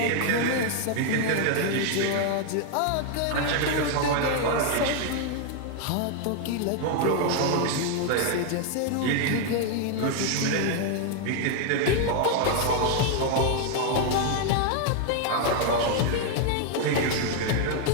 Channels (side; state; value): both; different; correlation 0.00